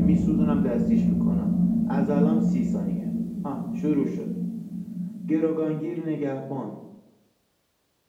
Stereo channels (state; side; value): identical; both; correlation 1.00